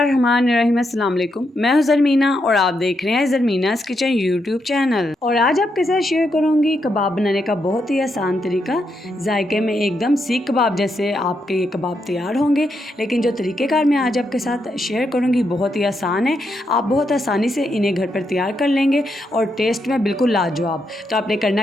अस्सलाम वालेकुम। मैं हूं ज़रमीना और आप देख रहे हैं ज़रमीना's किचन यूट्यूब चैनल। और आज आपके साथ शेयर करूंगी कबाब बनाने का बहुत ही आसान तरीका। जायके में एकदम सीख कबाब जैसे आपके ये कबाब तैयार होंगे, लेकिन जो तरीक़ेकार मैं आज आपके साथ शेयर करूंगी बहुत ही आसान है। आप बहुत आसानी से इन्हें घर पर तैयार कर लेंगे और टेस्ट में बिल्कुल लाजवाब। तो आपने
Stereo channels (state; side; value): normal; both; correlation 0.81